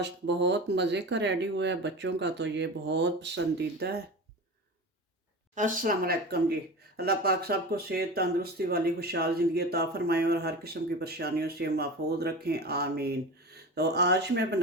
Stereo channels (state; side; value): normal; both; correlation 0.30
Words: बहुत मज़े का रेडी हुआ है, बच्चों का तो ये बहुत पसंदीदा है। अस्सलाम वालेकुम जी। अल्लाह पाक सबको सेहत तंदुरुस्ती वाली खुशहाल ज़िंदगी अता फ़रमाएँ और हर किस्म की परेशानियों से महफूज रखें, आमीन। तो आज मैं